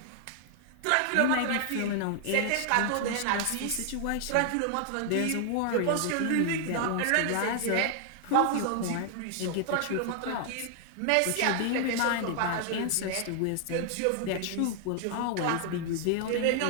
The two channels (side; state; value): both; different; correlation 0.00